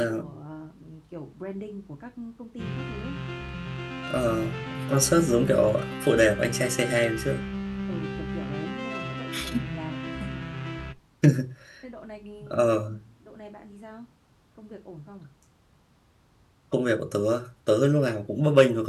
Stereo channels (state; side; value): identical; both; correlation 1.00